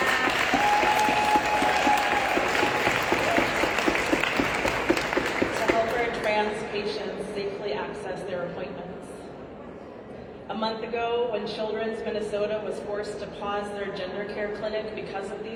patients safely access their appointments. A month ago, when Children's Minnesota was forced to pause their gender care clinic because of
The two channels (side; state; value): both; identical; correlation 1.00